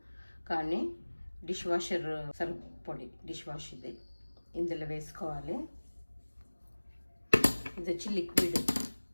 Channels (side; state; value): both; inverted; correlation -1.00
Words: కానీ డిష్ వాషర్ సర్ఫ్ పొడి డిష్ వాష్ ఇది ఇందులో వేసుకోవాలి. ఇది వచ్చి